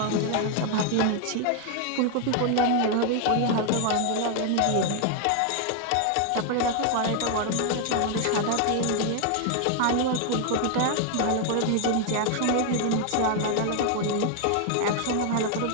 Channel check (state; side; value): different; both; correlation 0.00